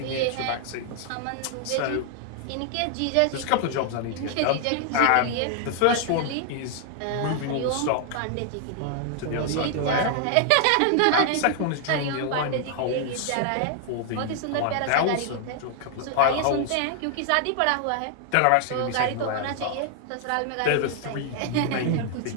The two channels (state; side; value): different; both; correlation 0.00